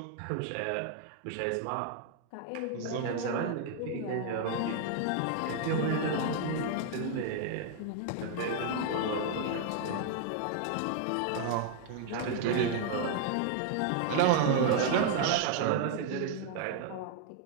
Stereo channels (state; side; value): different; both; correlation 0.00